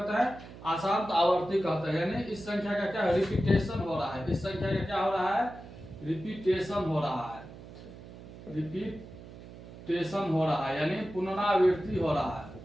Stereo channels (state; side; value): noise; right; hum, 16 dB below the sound